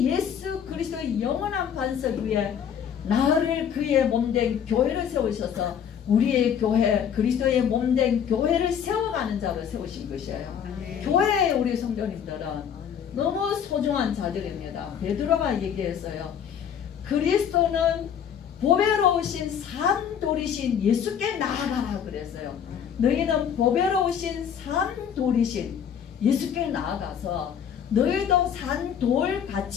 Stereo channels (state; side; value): quieter; right; 8.3 dB